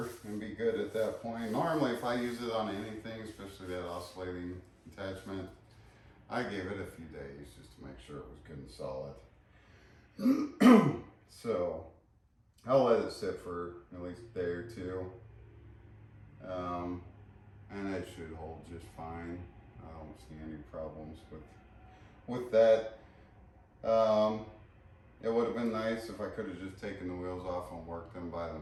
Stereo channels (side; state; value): both; identical; correlation 1.00